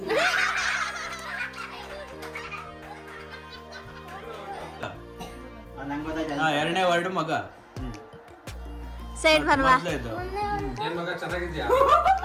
ಎರಡನೇ ವರ್ಡ್ ಮಗ. ಸೈಡ್ ಬರ್ವಾ. ಏನ್ ಮಗ ಚೆನ್ನಾಗಿದ್ಯಾ?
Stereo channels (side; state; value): both; identical; correlation 1.00